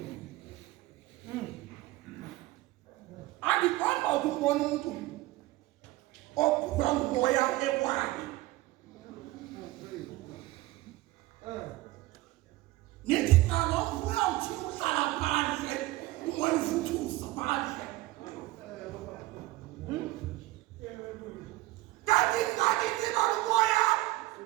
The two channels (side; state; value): left; quieter; 18.4 dB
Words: andiqonda ukubona umuntu ophulwa ngumoya ekwakhe nithi ngalomvuya uthi uhlala phandle umoya uvuthuza phandle kanti ngathi thina umoya